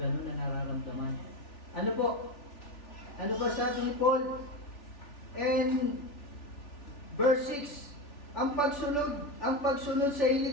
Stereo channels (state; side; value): late; right; 3.4 ms